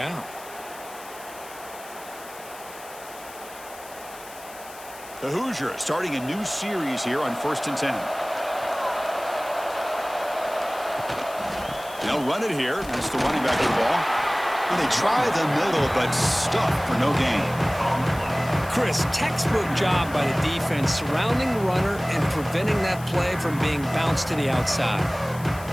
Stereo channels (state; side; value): noise; left; hiss, 18 dB below the sound